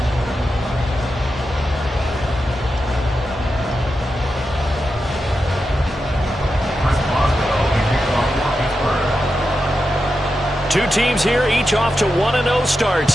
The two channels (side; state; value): both; normal; correlation 0.89